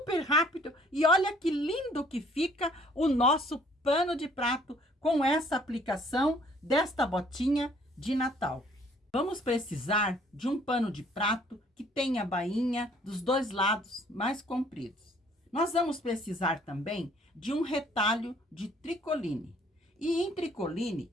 rápido e olha que lindo que fica o nosso pano de prato com essa aplicação desta botinha de Natal. Vamos precisar de um pano de prato que tenha a bainha dos dois lados mais compridos. Nós vamos precisar também de um retalho de tricoline. E em tricoline,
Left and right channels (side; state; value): both; normal; correlation 0.60